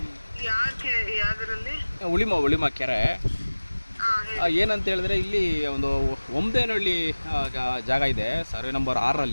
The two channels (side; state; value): both; inverted; correlation -1.00